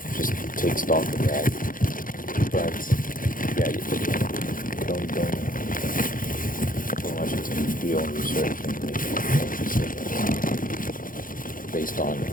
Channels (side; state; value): right; late; 0.40 ms